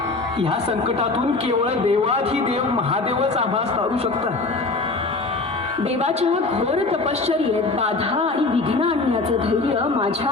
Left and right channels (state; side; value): quieter; right; 3.5 dB